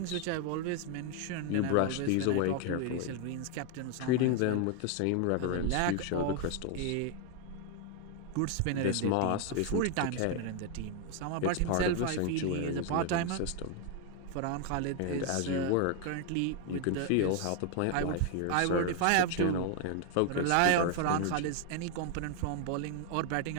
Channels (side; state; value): both; different; correlation 0.01